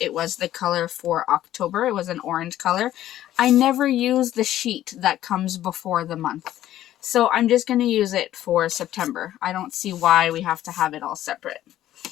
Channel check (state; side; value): quieter; right; 13.0 dB